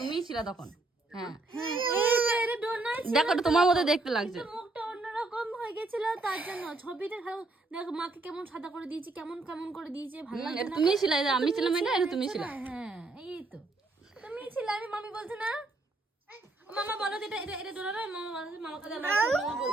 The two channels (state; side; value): quieter; left; 3.1 dB